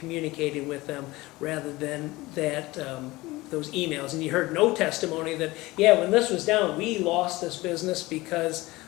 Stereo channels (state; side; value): quieter; right; 20.1 dB